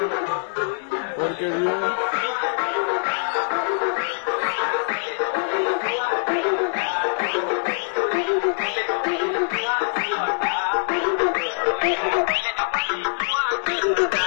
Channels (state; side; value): silent; right; digital silence